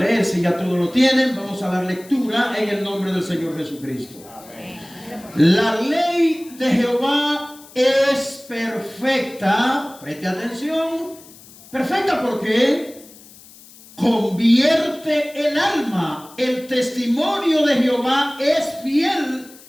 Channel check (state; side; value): noise; left; hiss, 22 dB below the sound